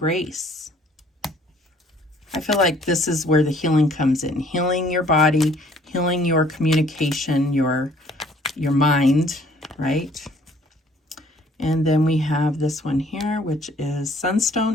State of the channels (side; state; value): both; normal; correlation 0.59